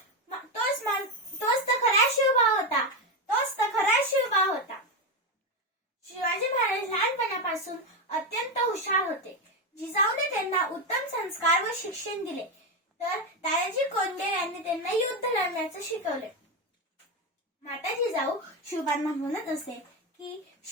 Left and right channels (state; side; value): normal; both; correlation 0.12